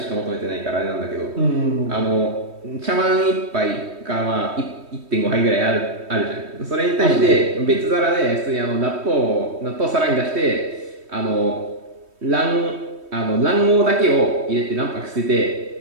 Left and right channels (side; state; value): left; late; 3.2 ms